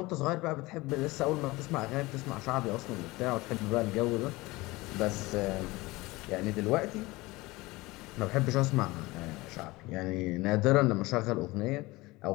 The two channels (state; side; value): quieter; right; 21.3 dB